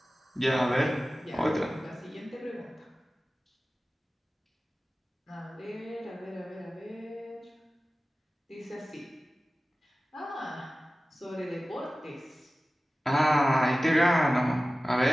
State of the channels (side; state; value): both; normal; correlation 0.96